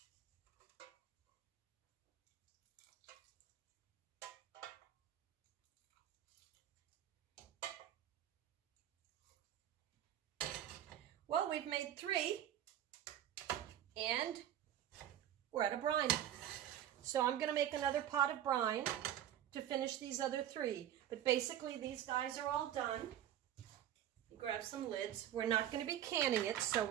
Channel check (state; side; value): quieter; left; 11.3 dB